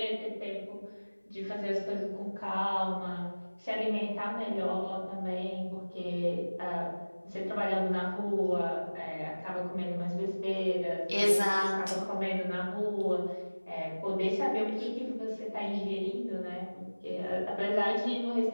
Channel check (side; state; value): both; inverted; correlation -1.00